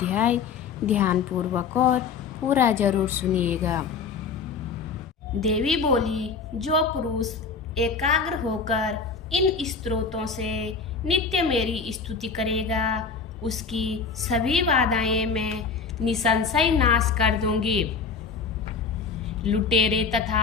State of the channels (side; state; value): right; quieter; 5.3 dB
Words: ध्यानपूर्वक और पूरा जरूर सुनिएगा। देवी बोली, जो पुरुष एकाग्र होकर इन स्तोत्रों से नित्य मेरी स्तुति करेगा, उसकी सभी बाधाएं मैं निसंशय नाश कर दूंगी। लुटेरे